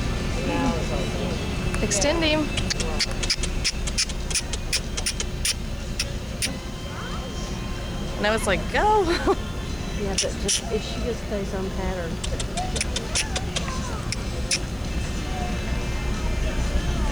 Extend him. Now it's like, go. Yeah, but just if she just stays on pattern.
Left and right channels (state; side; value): noise; left; hiss, 27 dB below the sound